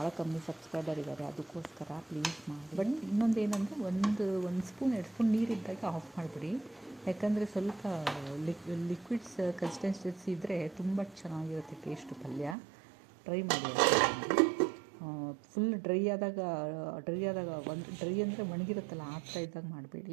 ಕಮ್ಮಿ ಸಬ್ಸ್ಕ್ರೈಬರ್ ಇದ್ದಾರೆ, ಅದಕ್ಕೋಸ್ಕರ ಪ್ಲೀಸ್ ಮಾಡಿ. ಬಟ್ ಇನ್ನೊಂದು ಏನಂದರೆ ಒಂದು ಸ್ಪೂನ್ 2 ಸ್ಪೂನ್ ನೀರಿದ್ದಾಗ ಆಫ್ ಮಾಡಿಬಿಡಿ, ಯಾಕಂದರೆ ಸ್ವಲ್ಪ ಲಿಕ್ವಿಡ್ಸ್ ಕನ್ಸಿಸ್ಟೆನ್ಸಿ ಇದ್ದರೆ ತುಂಬ ಚೆನ್ನಾಗಿರುತ್ತೆ ಟೇಸ್ಟು ಪಲ್ಯ. ಟ್ರೈ ಮಾಡಿ. ಫುಲ್ ಡ್ರೈ ಆದಾಗ ಡ್ರೈ ಅಂದರೆ ಒಣಗಿರುತ್ತಲ್ಲ ಆ ಥರ ಇದ್ದಾಗ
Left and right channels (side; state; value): left; drops out; at 12.6 s